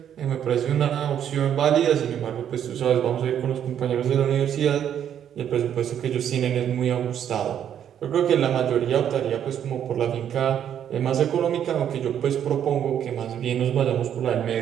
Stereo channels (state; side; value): quieter; left; 9.5 dB